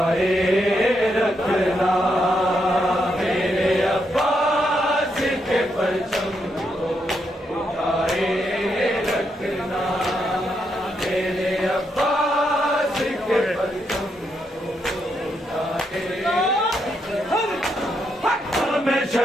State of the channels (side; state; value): both; normal; correlation 0.80